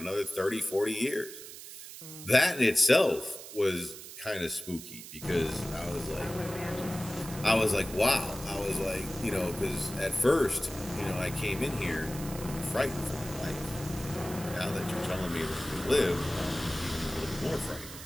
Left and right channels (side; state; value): right; noise; hiss, 13 dB below the sound